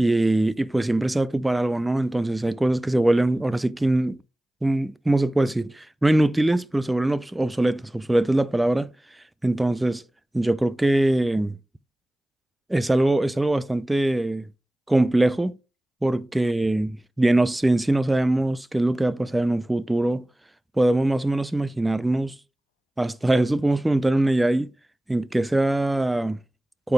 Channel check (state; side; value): normal; both; correlation 0.98